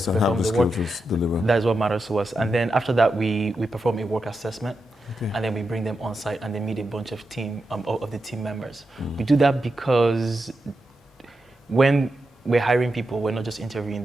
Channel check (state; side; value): normal; both; correlation 0.88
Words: to perform the work. That's what matters to us. And then after that, we perform a work assessment, and then we bring them on site and they meet a bunch of the team members. We do that because when we're hiring people, we're not just interviewing